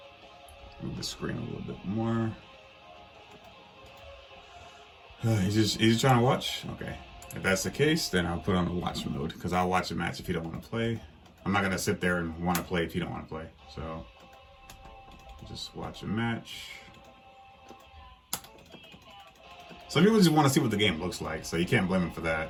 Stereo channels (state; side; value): identical; both; correlation 1.00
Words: Move the screen a little bit more. He's just trying to watch? Okay. If that's the case, then I'll put on the watch mode, because I'll watch a match if you don't want to play. I'm not going to sit there and want to play if you don't want to play. So, just watch a match. Some people just want to see what the game looks like, so you can't blame them for